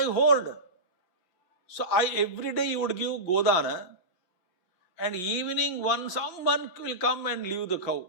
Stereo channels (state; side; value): late; right; 5.6 ms